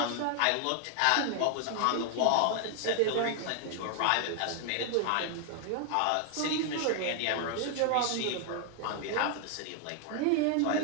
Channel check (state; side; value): different; both; correlation 0.00